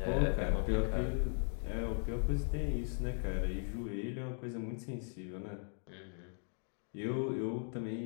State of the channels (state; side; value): silent; right; 52 dB below the other